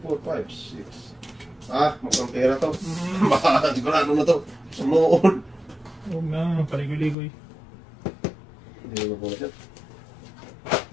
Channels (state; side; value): drops out; right; at 7.2 s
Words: 4, 5, 6. Mukhang pera to. Baka sigurado na to. Sumuon. Huwag na, paligoy-ligoy. Hindi mo po siya.